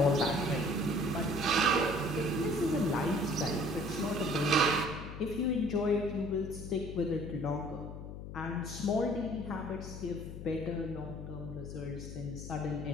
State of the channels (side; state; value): left; noise; hum, 10 dB below the sound